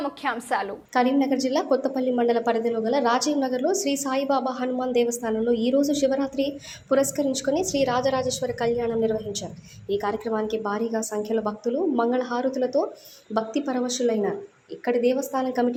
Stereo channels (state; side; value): identical; both; correlation 1.00